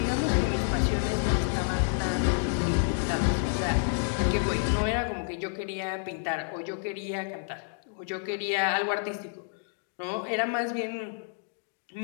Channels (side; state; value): right; silent; digital silence